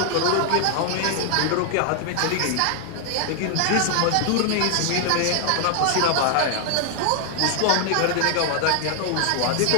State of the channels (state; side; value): different; both; correlation 0.00